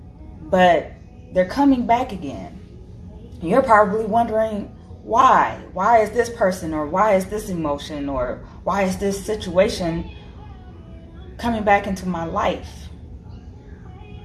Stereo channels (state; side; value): identical; both; correlation 1.00